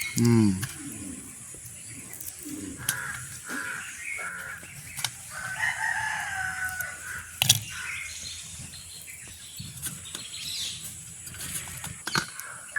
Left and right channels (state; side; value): identical; both; correlation 1.00